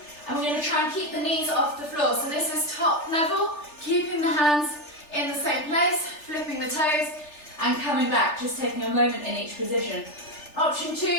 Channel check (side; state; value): right; late; 3.4 ms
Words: And we're going to try and keep the knees off the floor. So this is top level. Keeping the hands in the same place. Flipping the toes. And coming back, just taking a moment in each position. Option 2,